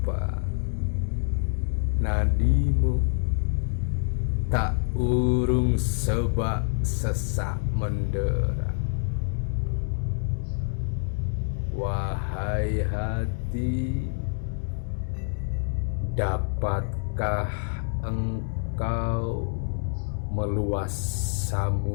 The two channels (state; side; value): silent; right; digital silence